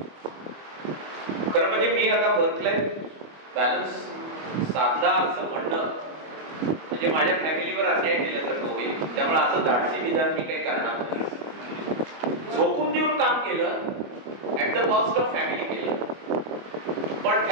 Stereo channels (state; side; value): late; left; 25 ms